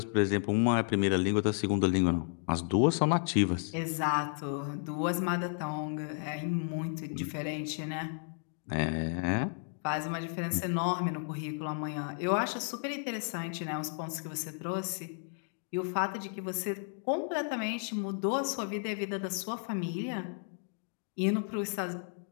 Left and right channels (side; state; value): right; silent; 56 dB below the other